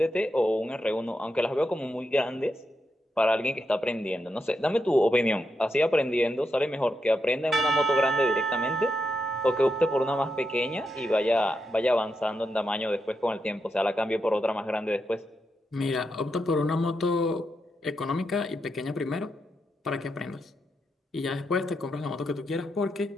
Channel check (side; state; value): both; normal; correlation 0.84